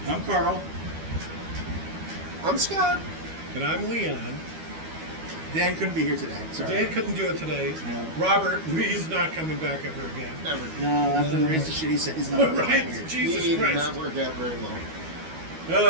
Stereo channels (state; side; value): late; left; 12 ms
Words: I'm Carl. I'm Scott. And I'm Leon. Dan couldn't be here today. Sorry. Dan couldn't do it today. No. Robert, he's not coming back ever again. Never. No, after the rest of shit he said he's not Right? here. Jesus He did Christ. not work out very